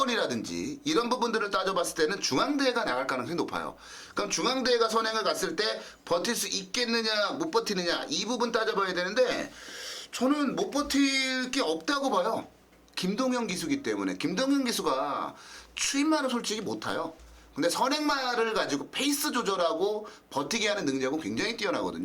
이런 부분들을 따져봤을 때는 중앙대가 나갈 가능성이 높아요. 그럼 중앙대가 선행을 갔을 때 버틸 수 있겠느냐 못 버티느냐 이 부분 따져봐야 되는데 저는 못 버틸 게 없다고 봐요. 김동현 기수기 때문에. 김동현 기수가 추임말을 솔직히 못 타요. 근데 선행말을 가지고 페이스 조절하고 버티게 하는 능력은 굉장히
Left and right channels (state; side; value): identical; both; correlation 1.00